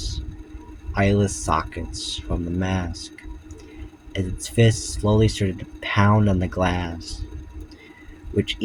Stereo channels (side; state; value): both; identical; correlation 1.00